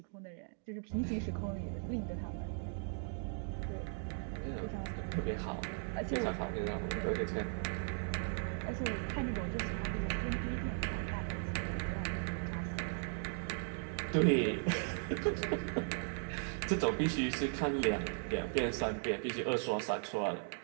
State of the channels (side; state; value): left; silent; 53 dB below the other